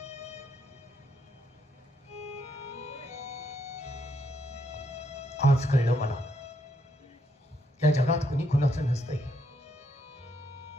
आज कळलं मला, या जगात कुणी कुणाचं नसतंय.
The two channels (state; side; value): normal; both; correlation 0.75